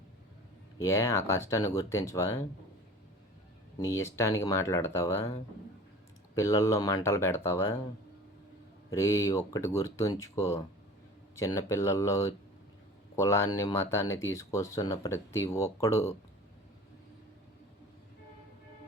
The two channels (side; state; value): both; normal; correlation 0.41